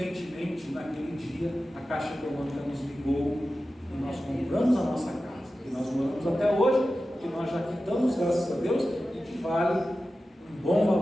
naquele dia, a Caixa Econômica nos ligou e nós compramos a nossa casa, que nós moramos até hoje, que nós já quitamos, graças a Deus, e que vale um bom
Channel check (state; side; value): normal; both; correlation 0.94